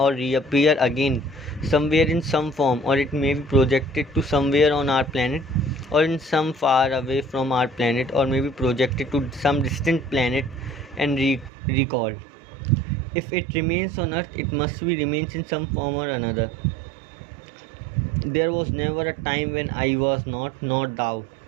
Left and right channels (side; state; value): left; drops out; at 11.5 s